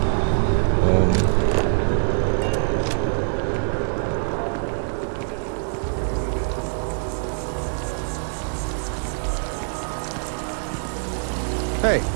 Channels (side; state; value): left; silent; 63 dB below the other